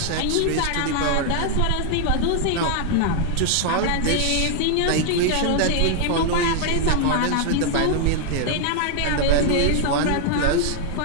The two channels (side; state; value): both; different; correlation 0.00